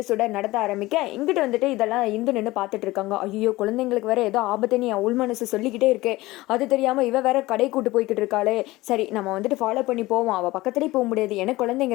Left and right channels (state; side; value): quieter; right; 19.2 dB